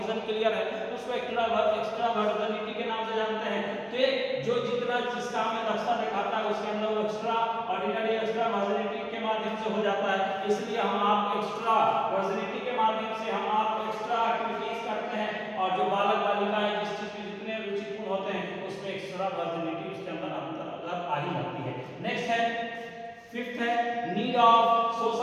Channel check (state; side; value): identical; both; correlation 1.00